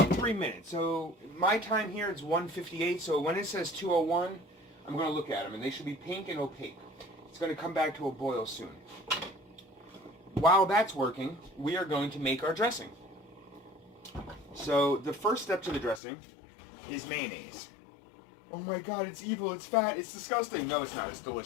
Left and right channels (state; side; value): drops out; right; at 16.0 s